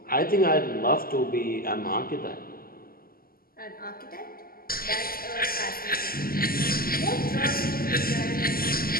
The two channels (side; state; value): right; late; 0.42 ms